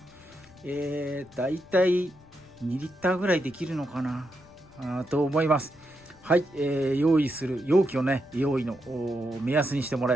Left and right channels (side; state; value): left; noise; rumble, 25 dB below the sound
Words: だいたい2リッターぐらいできるのかなと思います。はい、用意する容器をね用意の目安にしてもら